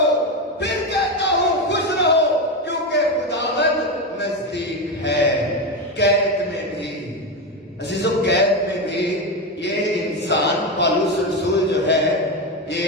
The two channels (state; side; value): normal; both; correlation 0.14